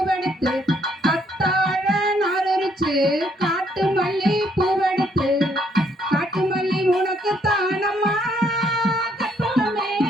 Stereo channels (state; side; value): normal; both; correlation 0.69